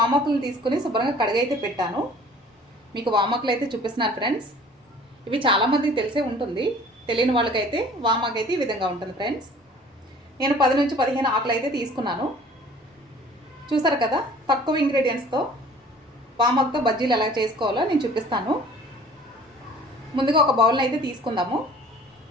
తీసుకుని శుభ్రంగా కడిగైతే పెట్టాను. మీకు వామాకులు అయితే చూపిస్తున్నాను ఫ్రెండ్స్. ఇవి చాలామందికి తెలిసే ఉంటుంది, తెలియని వాళ్ళకైతే వామాకు అయితే ఈ విధంగా ఉంటుంది ఫ్రెండ్స్. నేను 10 నుంచి 15 ఆకులు అయితే తీసుకున్నాను. చూసారు కదా, తక్కువ ఇంగ్రీడియంట్స్తో వామాకుతో బజ్జీలు ఎలా చేసుకోవాలో నేను చూపిస్తాను. ముందుగా ఒక బౌల్ని అయితే తీసుకుందాము.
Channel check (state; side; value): normal; both; correlation 0.49